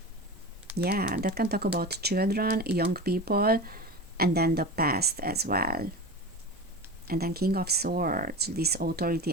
Yeah, that can talk about children, young people, and then the past as well. And then King of Swords, this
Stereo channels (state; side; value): normal; both; correlation 0.28